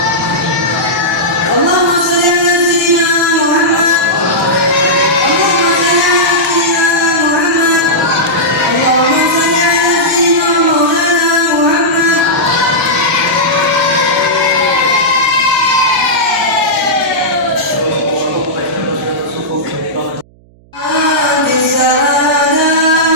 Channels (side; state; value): right; noise; hum, 29 dB below the sound